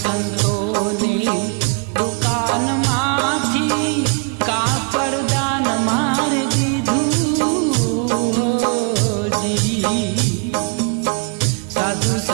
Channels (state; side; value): quieter; left; 37.3 dB